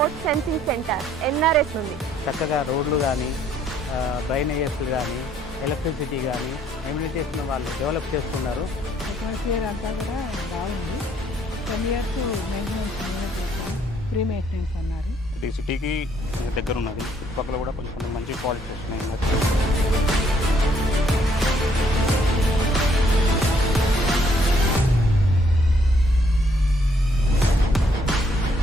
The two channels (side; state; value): both; normal; correlation 0.67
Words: sensing centre NRS ఉంది. చక్కగా రోడ్లు కానీ డ్రైనేజెస్ కానీ ఎలక్ట్రిసిటీ కానీ ఎమ్యూనిటీస్ను వాళ్ళు డెవలప్ చేస్తున్నారు. అట్మాస్ఫియర్ అంతా కూడా బాగుంది. 10 years మెయింటెనెన్స్ ఫ్రీ మెయింటెనెన్స్ అన్నారు. ఇది సిటీకి దగ్గర ఉన్నది. చుట్టుపక్కల కూడా కొంచెం మంచి క్వాలిటీ వస్తున్నాయి.